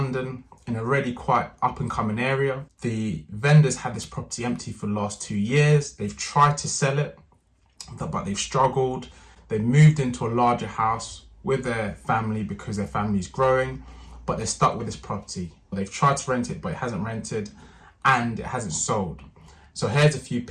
in a really quite up and coming area. The vendors had this property empty for the last 2 years. They've tried to sell it, but they've struggled. They moved into a larger house with their family because their family is growing, but they're stuck with this property. They've tried to rent it, but it hasn't rented and it hasn't sold. So here's a few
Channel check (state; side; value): identical; both; correlation 1.00